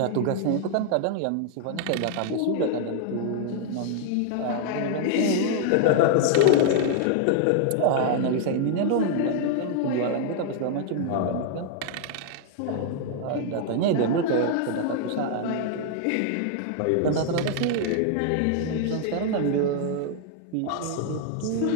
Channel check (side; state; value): both; different; correlation 0.00